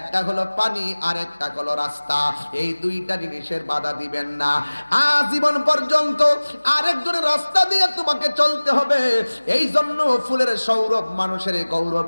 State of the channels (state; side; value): inverted; both; correlation -1.00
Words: হলো পানি আর একটা হলো রাস্তা। এই দুইটা জিনিসের বাধা দিবেন না। আজীবন পর্যন্ত আরেকজনের রাস্তা দিয়ে তোমাকে চলতে হবে। এই জন্য ফুলের সৌরভ মানুষের গৌরব